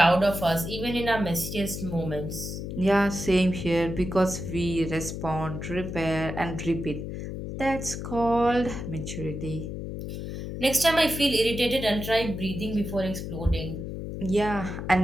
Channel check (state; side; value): noise; left; hum, 6 dB below the sound